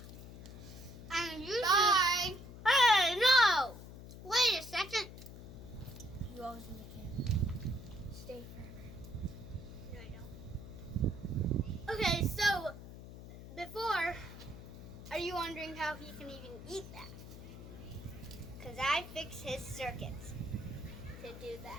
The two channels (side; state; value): left; noise; hum, 13 dB below the sound